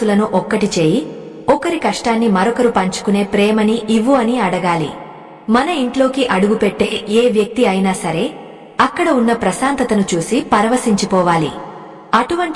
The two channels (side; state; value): both; identical; correlation 1.00